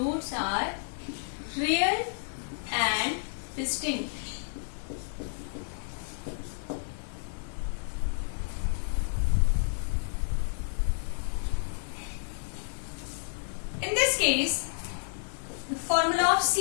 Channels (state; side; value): silent; right; digital silence